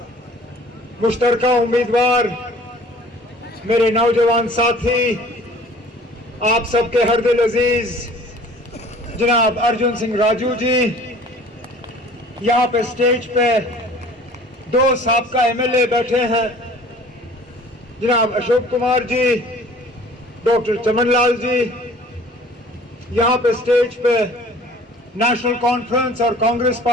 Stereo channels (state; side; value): normal; both; correlation 0.49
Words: मुश्तरका उम्मीदवार, मेरे नौजवान साथी, आप सबके हरदिल अजीज जनाब अर्जुन सिंह राजू जी, यहाँ पे स्टेज पे दो साबका एमएलए बैठे हैं, जनाब अशोक कुमार जी, डॉक्टर चमनलाल जी। यहाँ पे स्टेज पे नेशनल कॉन्फ्रेंस और कांग्रेस